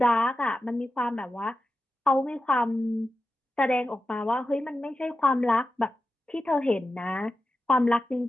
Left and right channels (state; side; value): normal; both; correlation 0.92